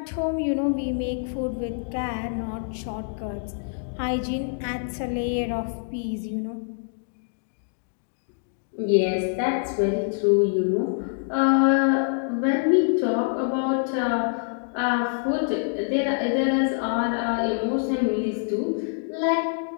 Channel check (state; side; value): silent; right; digital silence